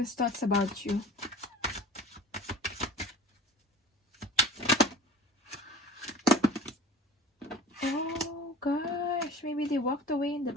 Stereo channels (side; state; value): both; normal; correlation 0.40